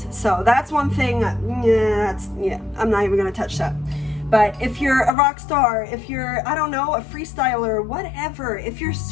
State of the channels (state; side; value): drops out; right; at 5.1 s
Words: So that's one thing. I'm not even going to touch that. But if you're a rock star, if you're, I don't know, a freestyler, whatever, if you're a